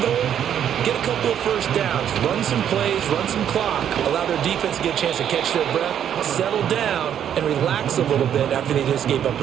goal, get a couple of first downs, run some plays, run some clock, allow their defense to get a chance to catch their breath, settle down, and relax a little bit after they just gave up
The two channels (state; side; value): quieter; left; 9.5 dB